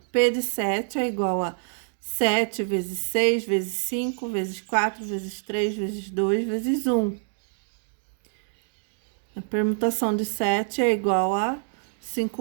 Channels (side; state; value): left; silent; 61 dB below the other